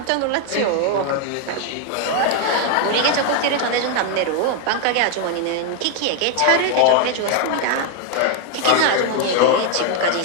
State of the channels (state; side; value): different; both; correlation 0.01